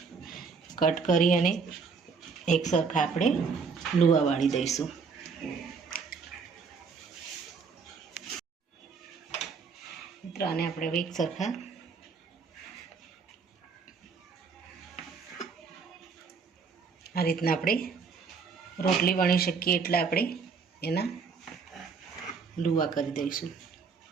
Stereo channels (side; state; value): left; quieter; 5.3 dB